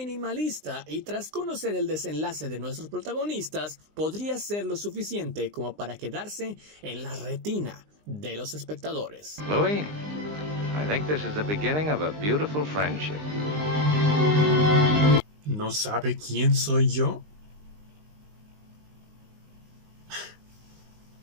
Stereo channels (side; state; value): left; late; 19 ms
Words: y tras conocer el desenlace de nuestros protagonistas, podría ser lo suficiente como para quedarse en la retina de los espectadores. Louis, I think this is the beginning of a beautiful friendship. ¿No sabe quién soy yo?